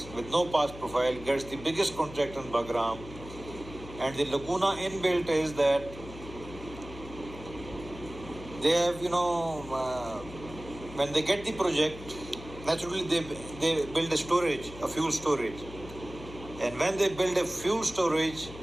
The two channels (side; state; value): left; noise; hum, 14 dB below the sound